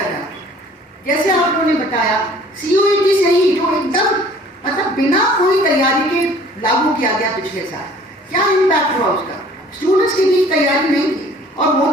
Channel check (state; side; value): normal; both; correlation 0.52